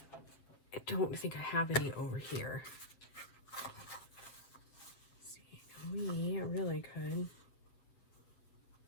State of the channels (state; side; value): late; right; 7.7 ms